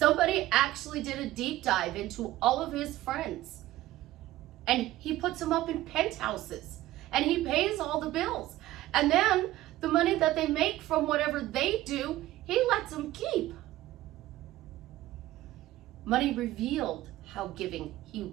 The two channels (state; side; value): quieter; left; 15.9 dB